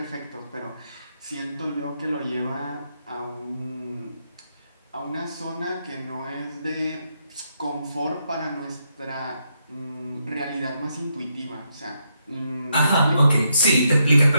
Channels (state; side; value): inverted; both; correlation -0.79